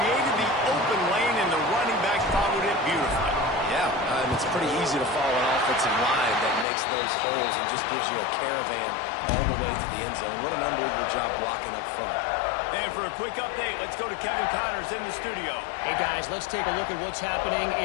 the open lane, and the running back followed it beautifully. Yeah, it's pretty easy to follow an offensive line that makes those holes and just gives you a caravan all the way to the end zone. What an unbelievable job blocking up front. And for a quick update, let's go to Kevin Connors in the studio. Hey, guys, let's take a look at what's happening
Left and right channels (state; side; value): drops out; right; at 6.7 s